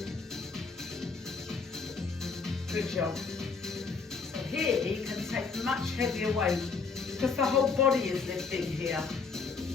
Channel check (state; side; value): quieter; right; 4.9 dB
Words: Good job. So here you can take much heavier weight because the whole body is lifting here.